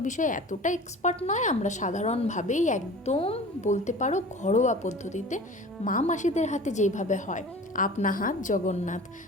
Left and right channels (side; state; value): both; normal; correlation 0.40